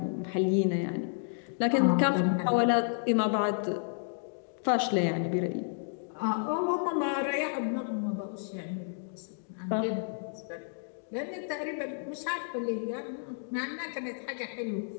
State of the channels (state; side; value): silent; right; digital silence